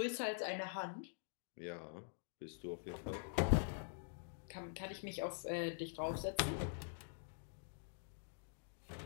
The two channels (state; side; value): silent; right; digital silence